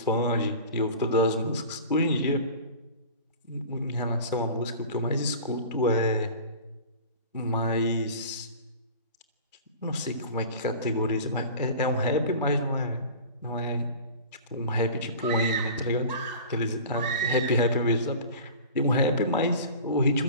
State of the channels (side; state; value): both; inverted; correlation -0.39